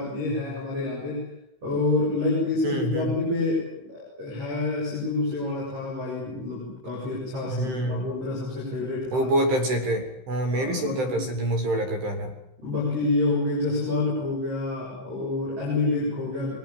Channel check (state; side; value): late; left; 15 ms